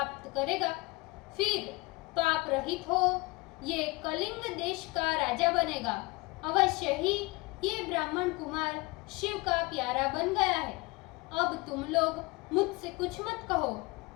करेगा। फिर पाप रहित हो ये कलिंग देश का राजा बनेगा। अवश्य ही ये ब्राह्मण कुमार शिव का प्यारा बन गया है। अब तुम लोग मुझसे कुछ मत कहो,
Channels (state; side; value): quieter; right; 25.1 dB